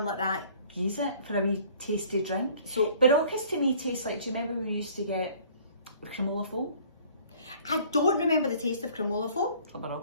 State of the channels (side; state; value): both; inverted; correlation -0.53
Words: like that. Use it for a wee tasty drink. So Baroccas to me taste like, do you remember we used to get cremola foam? I don't remember the taste of cremola foam. A